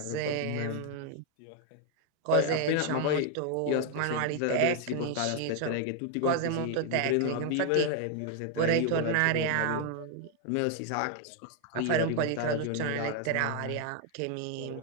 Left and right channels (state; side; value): different; both; correlation 0.00